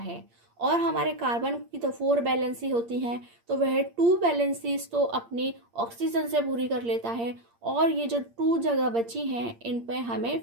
और हमारे कार्बन की तो 4 वैलेंसी होती हैं तो वह 2 वैलेंसीज तो अपनी ऑक्सीजन से पूरी कर लेता है और ये जो 2 जगह बची हैं इन पे हमें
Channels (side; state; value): left; late; 8.6 ms